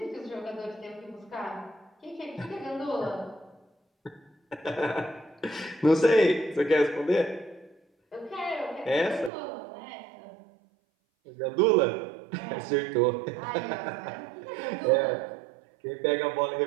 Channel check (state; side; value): drops out; left; at 9.3 s